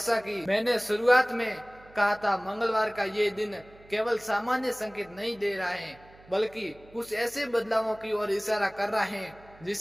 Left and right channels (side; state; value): right; noise; hum, 24 dB below the sound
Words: कि मैंने शुरुआत में कहा था, मंगलवार का ये दिन केवल सामान्य संकेत नहीं दे रहा है, बल्कि कुछ ऐसे बदलावों की ओर इशारा कर रहा है